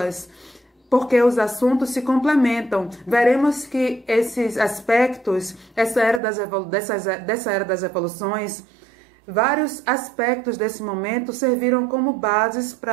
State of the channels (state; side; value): drops out; left; at 6.2 s